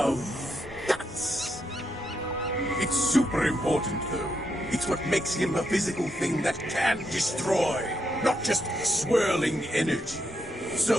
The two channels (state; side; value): normal; both; correlation 0.80